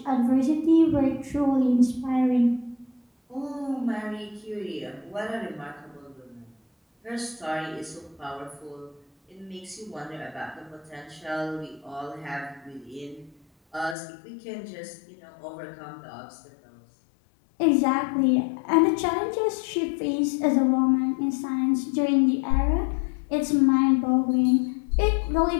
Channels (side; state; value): right; drops out; at 14.0 s